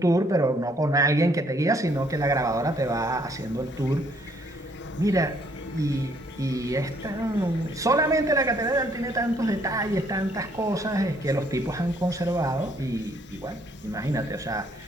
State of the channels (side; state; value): both; normal; correlation 0.66